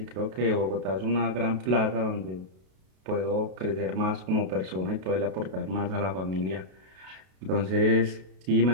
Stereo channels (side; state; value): left; late; 32 ms